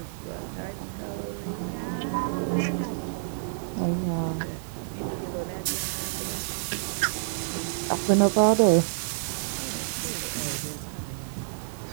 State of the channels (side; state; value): left; silent; digital silence